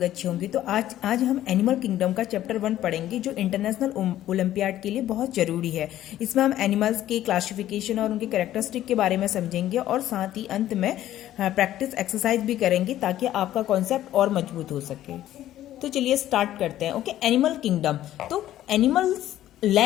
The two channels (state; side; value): quieter; right; 13.1 dB